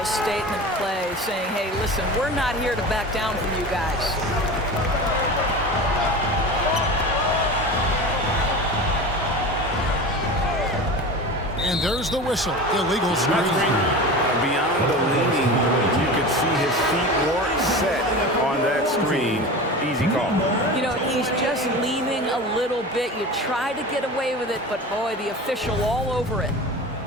statement play saying, hey, listen, we're not here to back down from you guys. And there's the whistle. Illegal screen. Beyond the leaning, you could see his feet weren't set on that screen. Easy call. You know, he's just leaning a little bit. You try to get away with it, but boy, the official all over it.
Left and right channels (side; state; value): both; normal; correlation 0.31